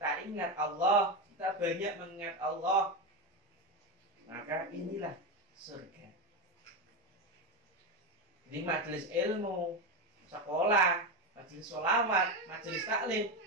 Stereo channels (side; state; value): both; normal; correlation 0.14